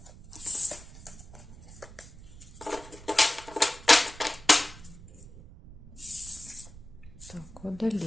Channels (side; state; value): right; noise; rumble, 18 dB below the sound